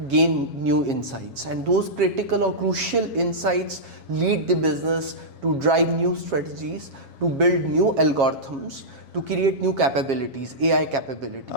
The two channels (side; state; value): left; late; 7.4 ms